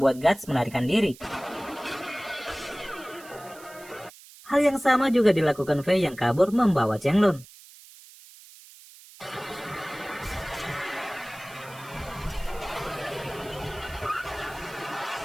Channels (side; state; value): right; noise; hiss, 21 dB below the sound